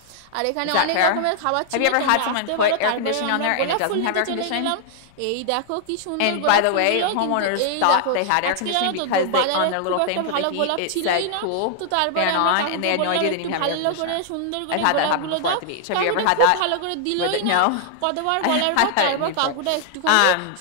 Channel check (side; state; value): both; different; correlation 0.00